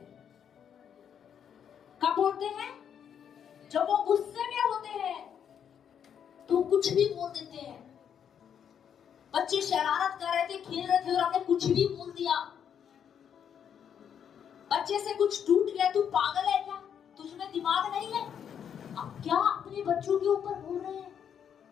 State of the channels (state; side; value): quieter; right; 8.3 dB